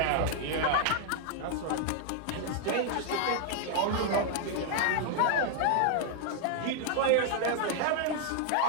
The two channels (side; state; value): both; different; correlation 0.00